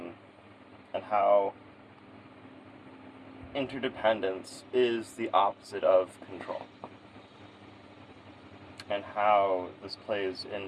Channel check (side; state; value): both; identical; correlation 1.00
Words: how interdependence is the opposite of control, and how this plays